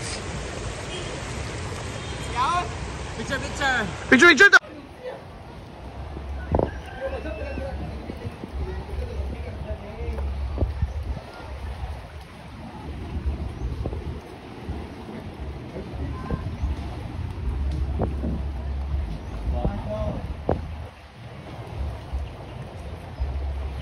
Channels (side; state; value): both; identical; correlation 1.00